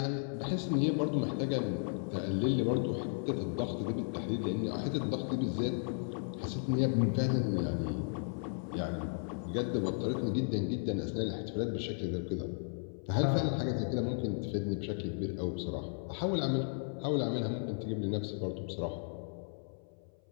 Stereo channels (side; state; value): right; silent; 55 dB below the other